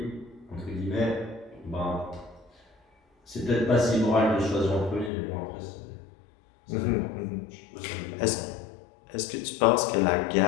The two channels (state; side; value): drops out; right; at 5.1 s